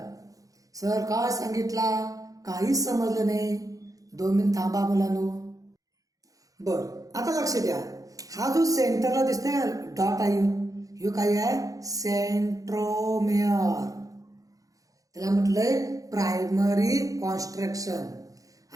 Sir काय सांगितला, काहीच समजलं नाही. 2 मिनिट थांबा मुलांनो. बर, आता लक्ष द्या. हा जो सेंटरला दिसतोय डॉट आहे, ह्यो काय आहे, सेंट्रोमेअर. त्याला म्हटलंय प्रायमरी कॉन्स्ट्रक्शन.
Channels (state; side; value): late; left; 0.17 ms